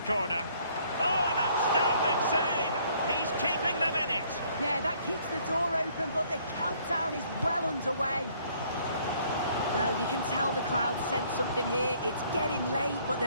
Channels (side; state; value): both; inverted; correlation -0.62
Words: corner. Oh, an outstanding save. He's keeping them in it. Yeah, that keeps the door open, but the countdown is well underway. Well, you can tell the crowd sense something here. It's getting late, but